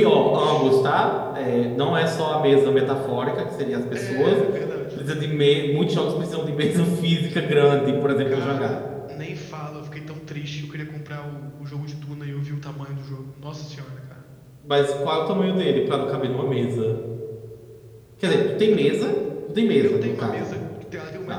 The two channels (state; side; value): identical; both; correlation 1.00